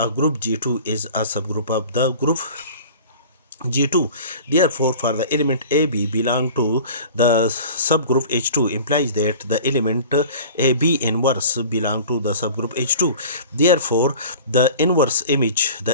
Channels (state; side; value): inverted; both; correlation -0.41